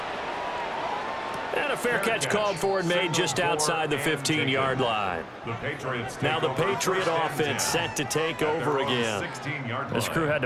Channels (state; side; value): identical; both; correlation 1.00